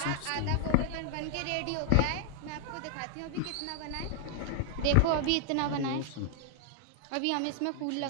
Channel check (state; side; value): different; both; correlation 0.00